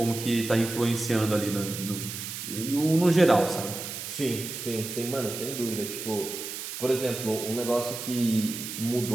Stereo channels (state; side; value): noise; right; hiss, 7 dB below the sound